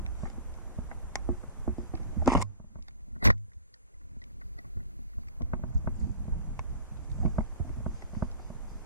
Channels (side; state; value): both; inverted; correlation -0.45